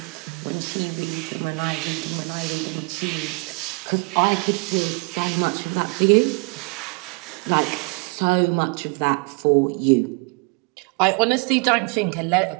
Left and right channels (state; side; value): quieter; left; 31.4 dB